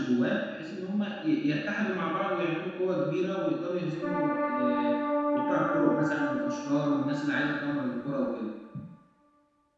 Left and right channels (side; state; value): both; identical; correlation 1.00